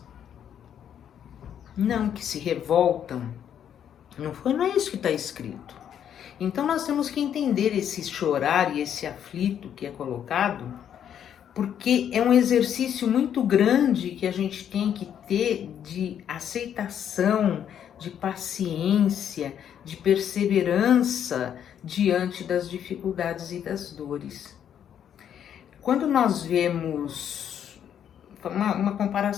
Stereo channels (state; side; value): quieter; right; 9.3 dB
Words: Não, que se revoltam. Não é isso que está escrito. Então nós temos que entender esse chorar e esse aflito que é colocado, porque é um exercício muito grande que a gente tem que ter de aceitação, de paciência, de perseverança diante das dificuldades e das dores. Quando nós vemos uma